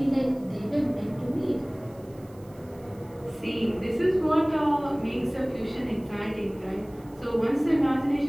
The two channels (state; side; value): noise; right; hiss, 28 dB below the sound